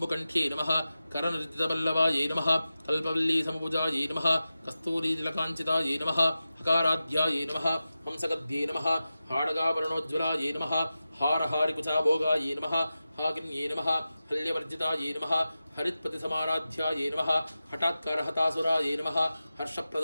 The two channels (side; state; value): both; inverted; correlation -0.93